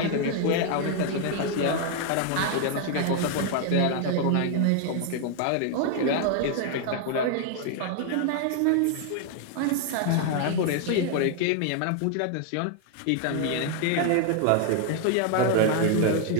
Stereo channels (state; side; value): different; both; correlation 0.00